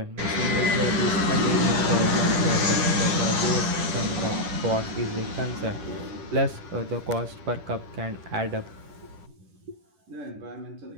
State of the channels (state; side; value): late; left; 10 ms